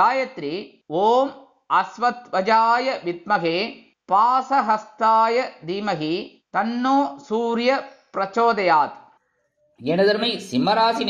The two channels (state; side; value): identical; both; correlation 1.00